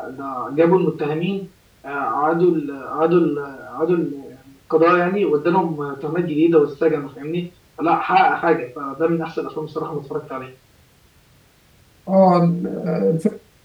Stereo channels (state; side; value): identical; both; correlation 1.00